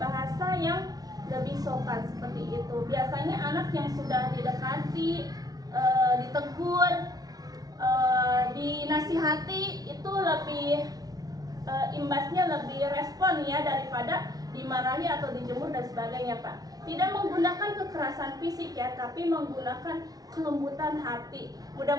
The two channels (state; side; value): late; left; 0.18 ms